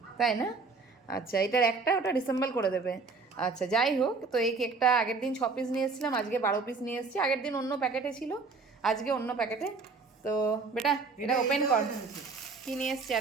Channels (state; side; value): quieter; left; 4.3 dB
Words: তাই না? আচ্ছা, এটার একটা ওটা ডিসেম্বল করে দেবে। আচ্ছা, যাই হোক, তো এই কেকটা আগের দিন 6 পিস নিয়ে এসেছিলাম, আজকে 12 পিস নিয়ে এসেছি। আগের দিন অন্য প্যাকেটে ছিল, আজকে অন্য প্যাকেটে। তো বেটা এটা ওপেন কর, কি নিয়ে এসছি